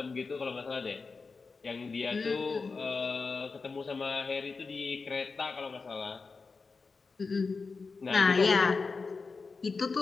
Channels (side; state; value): right; quieter; 4.4 dB